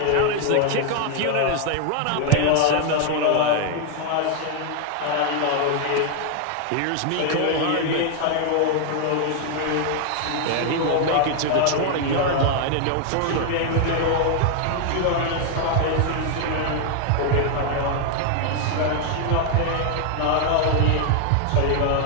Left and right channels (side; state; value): both; different; correlation 0.00